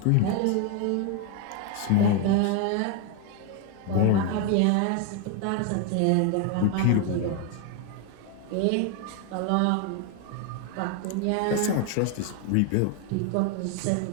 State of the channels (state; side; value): different; both; correlation 0.01